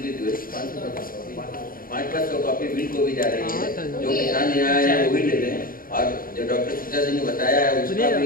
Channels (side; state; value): right; late; 0.41 ms